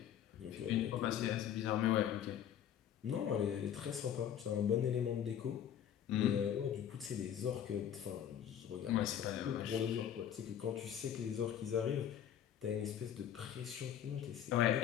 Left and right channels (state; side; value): quieter; right; 9.7 dB